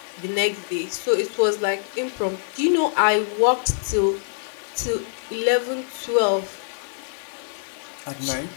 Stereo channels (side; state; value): right; silent; 62 dB below the other